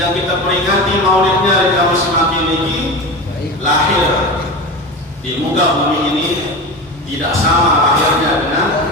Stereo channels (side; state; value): both; normal; correlation 0.27